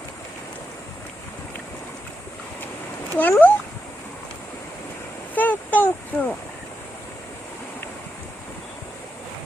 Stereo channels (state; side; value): normal; both; correlation 0.86